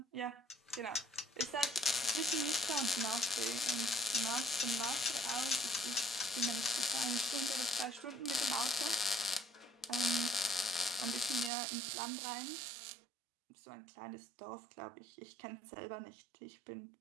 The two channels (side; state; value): left; drops out; at 11.5 s